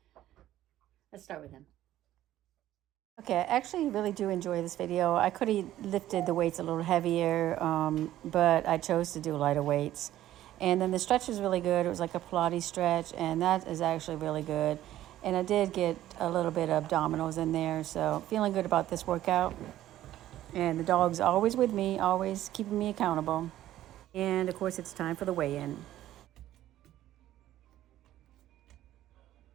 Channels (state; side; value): quieter; left; 13.5 dB